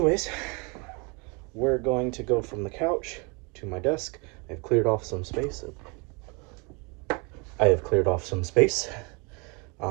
we're going to go from the couch to my desk. I've cleared off some space.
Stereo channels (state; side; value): quieter; left; 31.1 dB